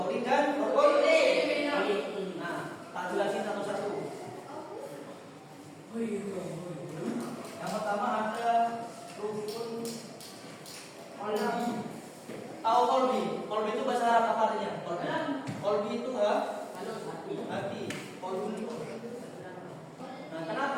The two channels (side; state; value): both; identical; correlation 1.00